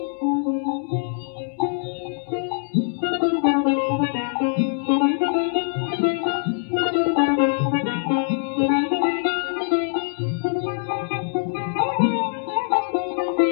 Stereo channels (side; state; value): right; silent; 63 dB below the other